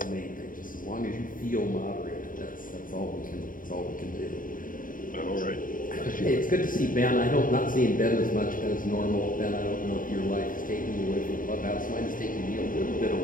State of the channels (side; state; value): right; late; 0.40 ms